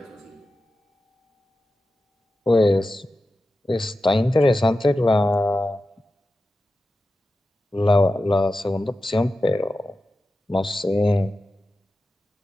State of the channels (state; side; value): normal; both; correlation 0.93